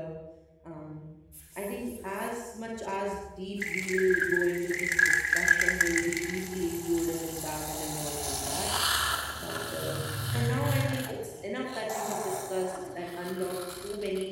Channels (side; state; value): both; identical; correlation 1.00